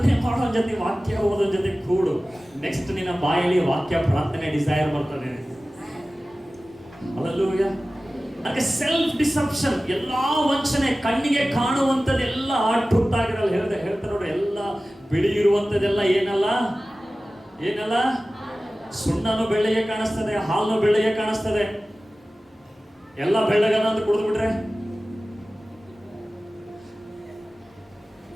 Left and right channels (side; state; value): both; normal; correlation 0.96